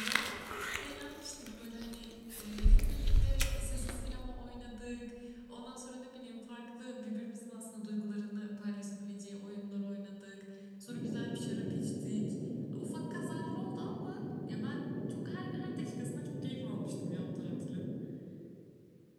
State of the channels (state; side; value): identical; both; correlation 1.00